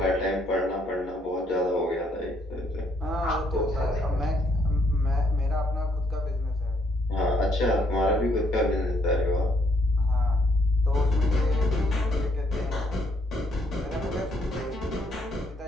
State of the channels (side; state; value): both; normal; correlation 0.70